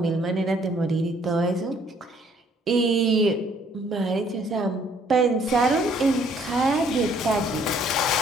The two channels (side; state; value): both; normal; correlation 0.63